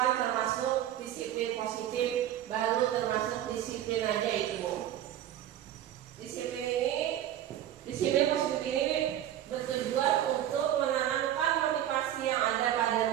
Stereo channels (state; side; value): quieter; left; 11.7 dB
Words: termasuk disiplin positif, baru termasuk disiplin aja itu. Disiplin positif ini bertujuan untuk menanamkan motivasi yang ada